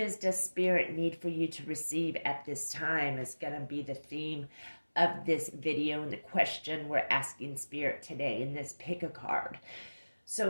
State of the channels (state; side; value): inverted; both; correlation -1.00